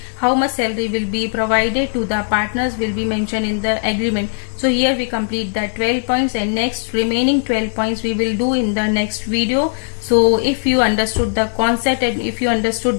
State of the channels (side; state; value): right; silent; 67 dB below the other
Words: how much salary will be provided to the partners will be mentioned in the agreement. So here we complete the 12 points, and next remaining 12 points we will do in the next video. So if you understood the concept and if you